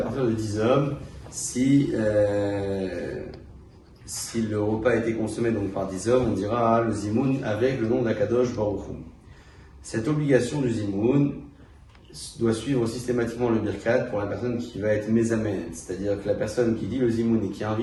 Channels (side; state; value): both; identical; correlation 1.00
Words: de 10 hommes, si le repas a été consommé donc par 10 hommes, on dira le zimoun avec le nom d'Akadosh Baruch Hu. Cette obligation du zimoun doit suivre systématiquement le birkat pour la personne qui va être mésamen, c'est-à-dire que la personne qui dit le zimoun et qui